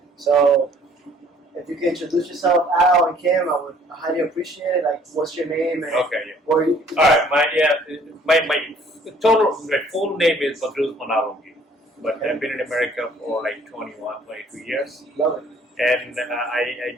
So if you can introduce yourself, Al and Kim, I would highly appreciate it. Like, what's your name? And Okay, yeah. where you? All right, my full name is Badruz Manalongi, but I've been in America for like 21, 22 years, Love it. and I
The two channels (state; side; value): normal; both; correlation 0.58